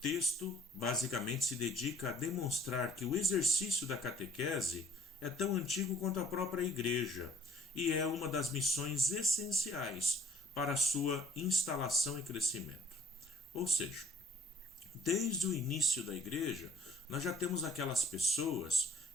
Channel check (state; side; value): normal; both; correlation 0.56